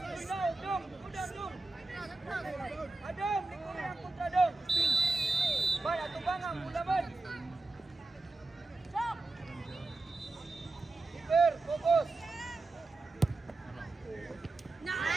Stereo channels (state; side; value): quieter; left; 3.2 dB